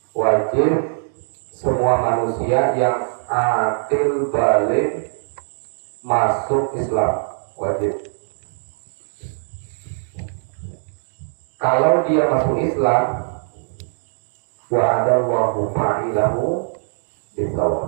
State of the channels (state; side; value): silent; left; digital silence